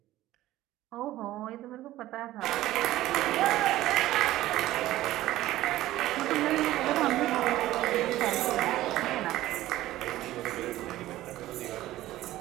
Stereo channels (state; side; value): quieter; left; 15.3 dB